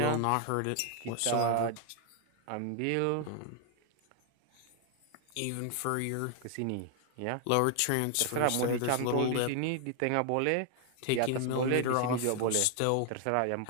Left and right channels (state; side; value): different; both; correlation 0.00